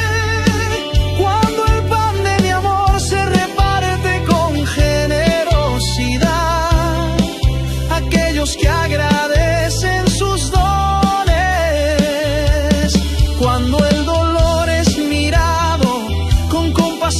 cuando el pan de mi amor se reparte con generosidad. Aquellos que agradecen sus dones, cuando el dolor es mirado con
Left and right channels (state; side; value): identical; both; correlation 1.00